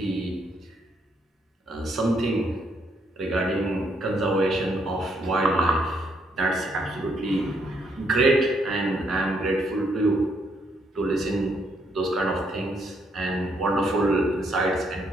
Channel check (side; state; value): both; normal; correlation 0.73